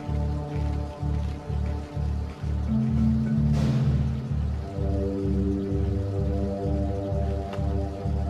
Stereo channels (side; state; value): both; identical; correlation 1.00